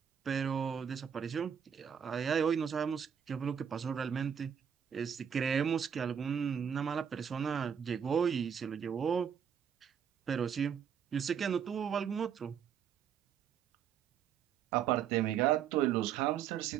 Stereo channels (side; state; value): left; quieter; 8.0 dB